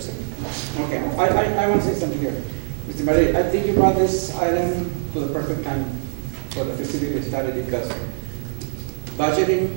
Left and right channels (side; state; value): left; silent; 64 dB below the other